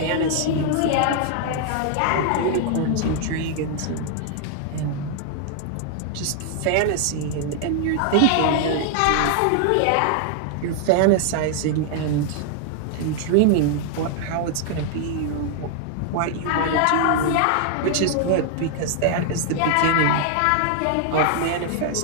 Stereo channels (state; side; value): different; both; correlation 0.00